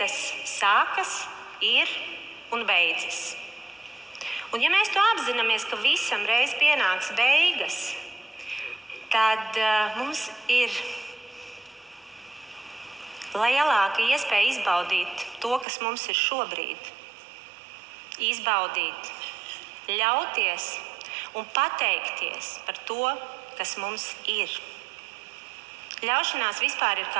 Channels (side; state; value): left; drops out; at 15.7 s